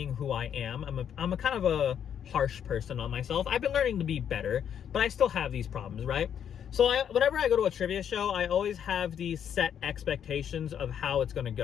who I am. I'm a kind of a harsh person on myself. I've been learning to be better, but I still have these problems, right? So whenever I go to a trivia show, I always have these set expectations of how it's gonna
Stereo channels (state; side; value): quieter; right; 8.8 dB